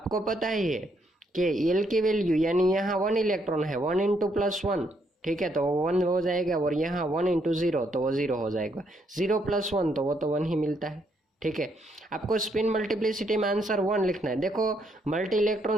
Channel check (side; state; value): both; normal; correlation 0.74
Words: पता ही है कि एल की वैल्यू यानी यहाँ 1 इलेक्ट्रॉन है, 1 इंटू +1, ठीक है, तो 1 हो जाएगा, और यहाँ 1 इंटू 0 तो वो 0 हो जाएगा, 0 + 1 तो वो तो 1 ही मिलता है, ठीक है। आपको स्पिन मल्टीप्लिसिटी में आंसर 1 लिखना है। देखो मल्टी